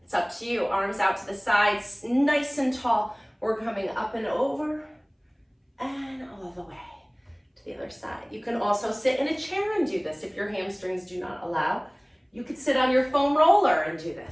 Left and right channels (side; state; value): both; identical; correlation 1.00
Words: It's up to you. Arms out to the sides, nice and tall. We're coming up and over and all the way to the other side. You can also sit in a chair and do this if your hamstrings do not allow. You could sit on your foam roller and do